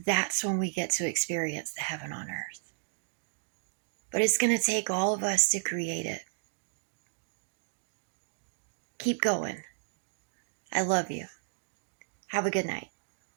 that's when we get to experience the heaven on earth. But it's going to take all of us to create it. Keep going. I love you. Have a good night.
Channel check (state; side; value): silent; left; digital silence